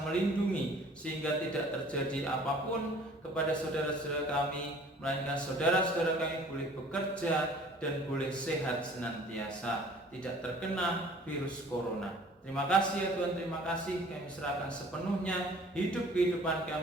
melindungi sehingga tidak terjadi apapun kepada saudara-saudara kami, melainkan saudara-saudara kami boleh bekerja dan boleh sehat senantiasa, tidak terkena virus corona. Terima kasih ya Tuhan, terima kasih. Kami serahkan sepenuhnya hidup kehidupan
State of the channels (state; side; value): normal; both; correlation 0.51